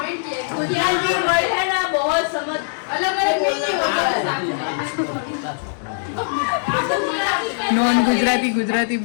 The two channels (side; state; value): right; silent; 65 dB below the other